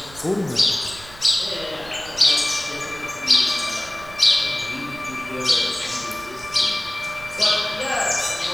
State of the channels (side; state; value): right; noise; rumble, 19 dB below the sound